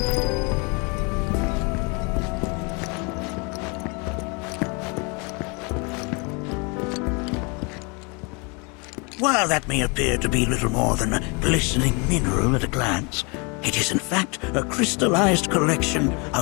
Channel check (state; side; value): quieter; right; 31.4 dB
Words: While that may appear to be little more than a glistening mineral at a glance, it is in fact a crystallized collection